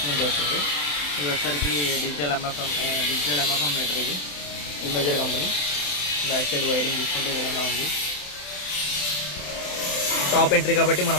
నుంచి వస్తుంది. ఇది వచ్చేసరికి డిజిటల్ ఎంఎఫ్ఎం మీటర్, ఇది ఇమేజర్ కంపెనీ. బ్యాక్ సైడ్ వైరింగ్ తీసుకుంటే ఈ విధంగా ఉంది. టాప్ ఎంట్రీ కాబట్టి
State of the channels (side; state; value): right; late; 27 ms